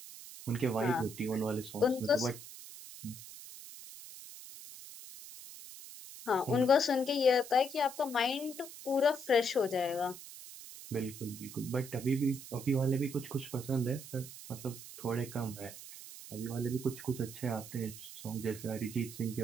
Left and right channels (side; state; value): right; noise; hiss, 14 dB below the sound